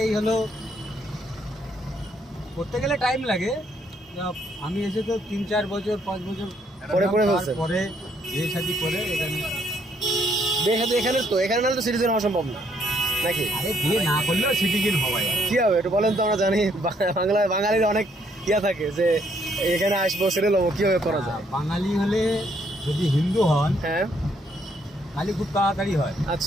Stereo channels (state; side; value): normal; both; correlation 0.70